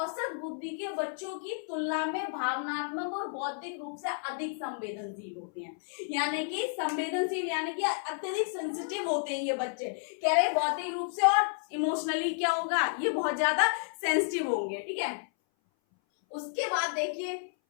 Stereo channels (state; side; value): silent; right; 57 dB below the other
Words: बुद्धि के बच्चों की तुलना में भावनात्मक और बौद्धिक रूप से अधिक संवेदनशील होते हैं। यानी कि संवेदनशील यानी कि अत्यधिक सेंसिटिव होते हैं ये बच्चे, कह रहे बौद्धिक रूप से और इमोशनली क्या होगा, ये बहुत ज्यादा सेंसिटिव होंगे, ठीक है। उसके बाद देखिए